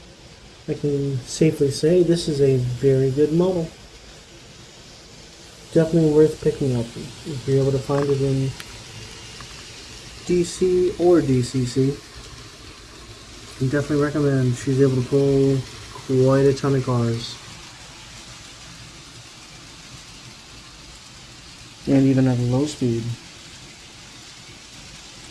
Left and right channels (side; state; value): both; identical; correlation 1.00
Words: I can safely say this is a very good model. Definitely worth picking up if you're able to find it in DC or DCC. I definitely recommend. She's able to pull quite a ton of cars. And even at a low speed.